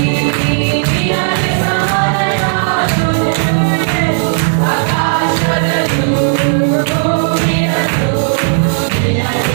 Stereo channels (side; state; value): left; silent; 72 dB below the other